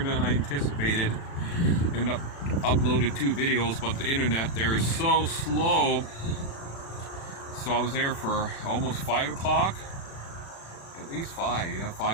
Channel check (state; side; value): late; right; 36 ms